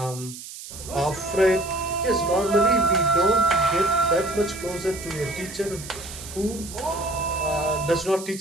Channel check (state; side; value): noise; right; hiss, 13 dB below the sound